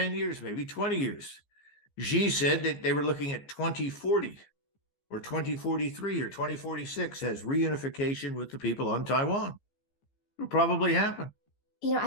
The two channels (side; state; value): right; late; 15 ms